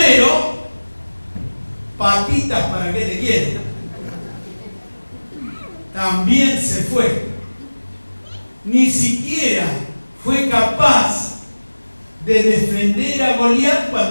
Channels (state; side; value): inverted; both; correlation -1.00